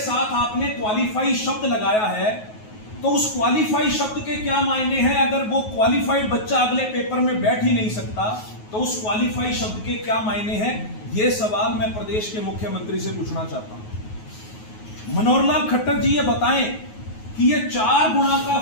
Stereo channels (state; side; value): late; right; 9.4 ms